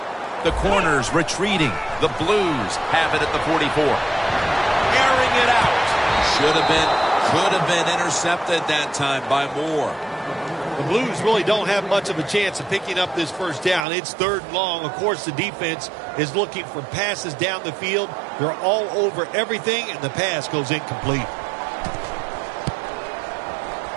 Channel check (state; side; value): drops out; left; at 13.9 s